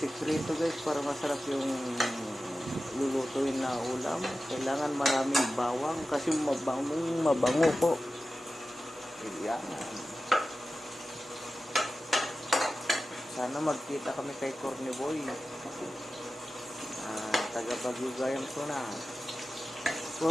guys para masarap yung lulutuin na ulam, kailangan maraming bawang kasi mabango po. Ayan. Sana magkita kami kay Corny Boy. Taga Bagugayang ko na.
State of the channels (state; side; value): normal; both; correlation 0.94